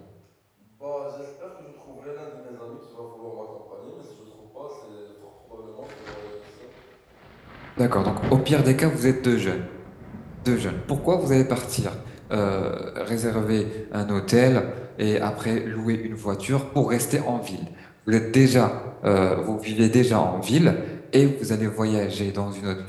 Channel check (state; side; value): identical; both; correlation 1.00